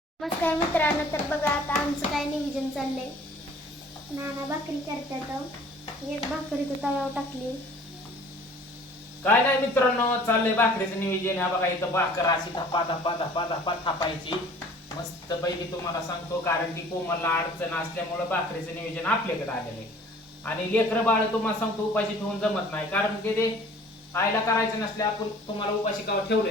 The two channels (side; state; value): both; normal; correlation 0.50